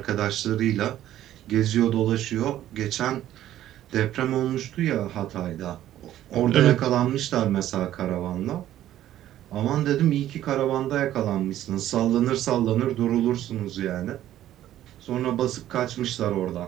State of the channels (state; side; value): quieter; left; 12.7 dB